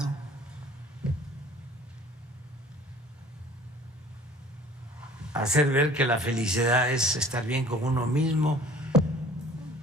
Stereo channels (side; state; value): both; normal; correlation 0.49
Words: Hacer ver que la felicidad es estar bien con uno mismo,